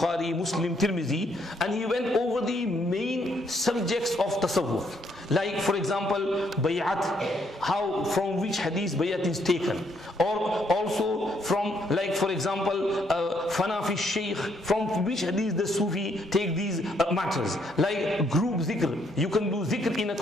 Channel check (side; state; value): both; normal; correlation 0.71